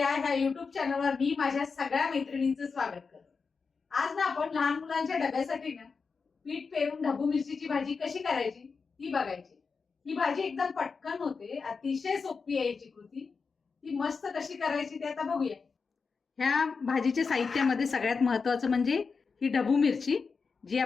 ह्या YouTube चॅनलवर मी माझ्या सगळ्या मैत्रिणींचं स्वागत करते. आज ना आपण लहान मुलांच्या डब्यासाठी ना पीठ पेरून ढबू मिरचीची भाजी कशी करायची ती बघायची. ही भाजी एकदम पटकन होते, अतिशय सोपी आहे याची कृती. ती मस्त कशी करायची ते आता बघूया. ह्या भाजीच्या साहित्यामध्ये सगळ्यात महत्वाचं म्हणजे ही ढबू मिरची, जी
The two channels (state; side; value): quieter; right; 5.0 dB